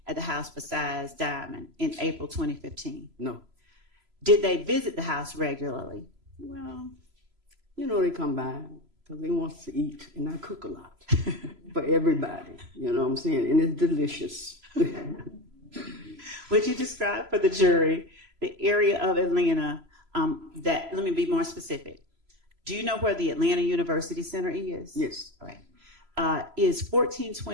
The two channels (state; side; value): late; left; 3.0 ms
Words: at the house besides Diamond in April 2015? No. Did they visit the house regularly? Well, you know, they come by because they want to eat, and I cook a lot for everybody. You know what I'm saying? And it's delicious. Would you describe for the jury the area of Atlanta that, let me be more specific. Do you know where the Atlanta University Center is? Yes. All right. Is